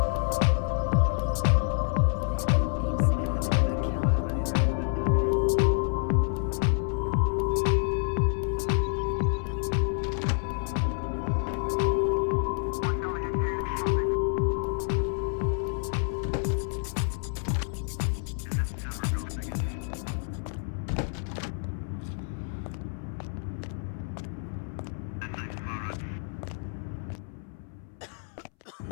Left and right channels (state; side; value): silent; right; 59 dB below the other